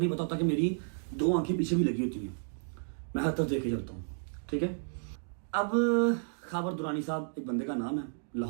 पता होता कि मेरी 2 आंखें पीछे भी लगी होती हैं। मैं हर तरफ देखे चलता हूँ। ठीक है, अब खाबर दुरानी साहब एक बंदे का नाम है,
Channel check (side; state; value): left; silent; digital silence